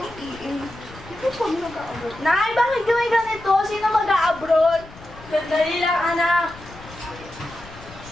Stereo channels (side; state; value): left; noise; rumble, 19 dB below the sound